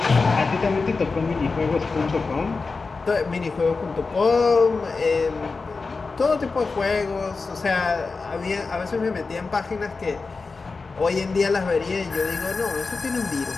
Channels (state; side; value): quieter; right; 4.2 dB